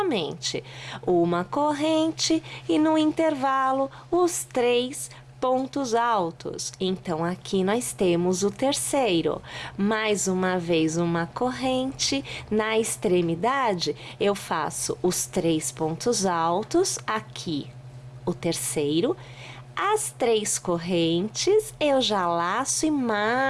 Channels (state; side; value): identical; both; correlation 1.00